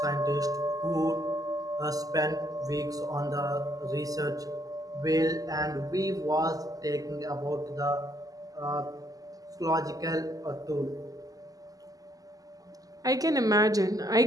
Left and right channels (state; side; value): late; left; 0.17 ms